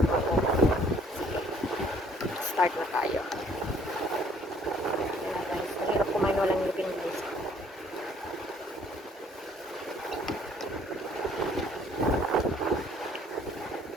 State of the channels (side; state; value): both; normal; correlation 0.60